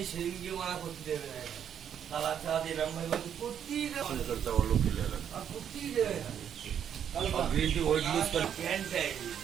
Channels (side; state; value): left; quieter; 8.9 dB